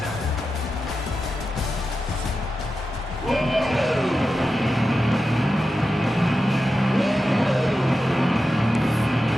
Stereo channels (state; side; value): normal; both; correlation 0.91